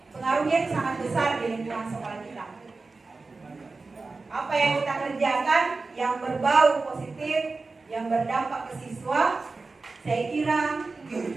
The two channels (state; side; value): quieter; left; 3.8 dB